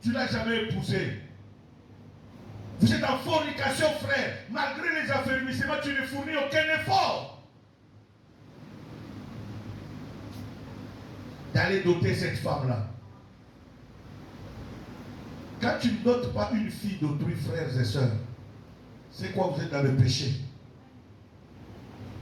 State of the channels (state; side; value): identical; both; correlation 1.00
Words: tu ne l'as jamais épousée. Vous êtes en fornication, frère. Malgré les affermissements, tu ne fournis aucun effort d'aller doter cette femme-là. Quand tu ne dotes pas une fille d'autrui, frères et sœurs, c'est quoi? Vous êtes dans le péché.